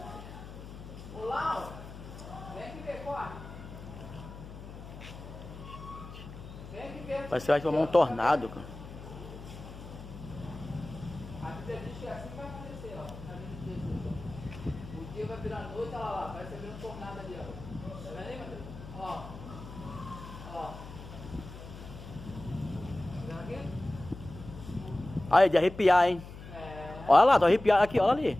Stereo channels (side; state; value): left; noise; hum, 13 dB below the sound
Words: Olá, vem aqui ver, corre. Vem aqui ver. Parece que vai formar um tornado, cara. A Bíblia diz que é assim que vai acontecer, ó. Na vida de Jesus. O dia vai virar noite, olha lá, vai ser um tornado ali, ó. Tá vendo aí, Matheus? Ó. Ó. Tá vendo aqui? Aí, de arrepiar, hein? É. Olha lá, tô arrepiado aqui, olha